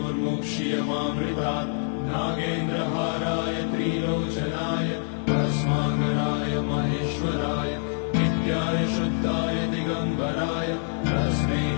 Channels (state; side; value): silent; right; 61 dB below the other